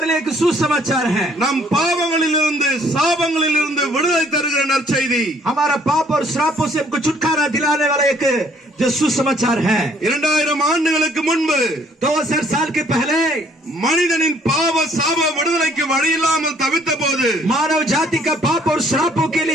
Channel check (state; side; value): normal; both; correlation 0.62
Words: लिए एक सुसमाचार है. நம் பாவங்களிலிருந்து சாபங்களிலிருந்து விடுதலை தருகிற நற்செய்தி. हमारा पाप और श्रापों से हमको छुटकारा दिलाने वाला एक जो सुसमाचार है. 2000 ஆண்டுகளுக்கு முன்பு 2000 साल के पहले மனிதனின் பாவ சாப விடுதலைக்கு வழி இல்லாமல் தவித்த போது मानव जाति का पाप और श्रापों के